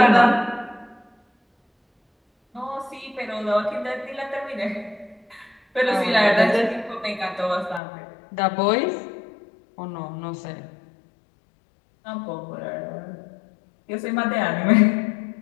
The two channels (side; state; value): right; drops out; at 7.8 s